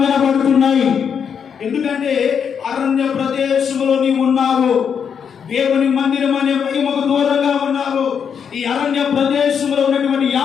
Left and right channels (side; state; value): right; quieter; 7.2 dB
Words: వినబడుతున్నాయి. ఎందుకంటే అరణ్య ప్రదేశంలో నీవు ఉన్నావు, దేవుని మందిరం అనే మహిమకు దూరంగా ఉన్నావు. ఈ అరణ్య ప్రదేశంలో ఉన్నటువంటి